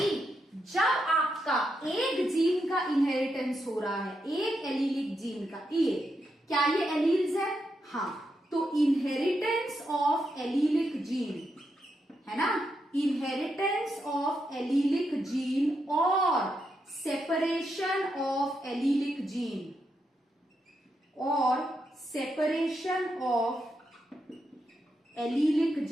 जब आपका एक जीन का इनहेरिटेंस हो रहा है, एक एलीलिक जीन का, ये क्या ये एलील्स है, हाँ, तो इनहेरिटेंस ऑफ एलीलिक जीन है ना, इनहेरिटेंस ऑफ एलीलिक जीन और सेपरेशन ऑफ एलीलिक जीन और separation of allelic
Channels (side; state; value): both; normal; correlation 0.83